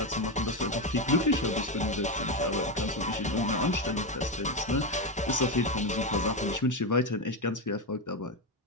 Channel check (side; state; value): both; normal; correlation 0.11